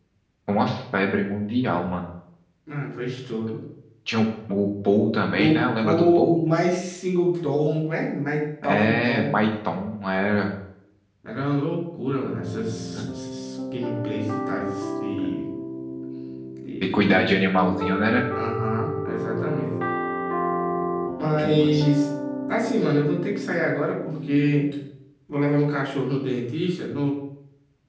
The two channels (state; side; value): identical; both; correlation 1.00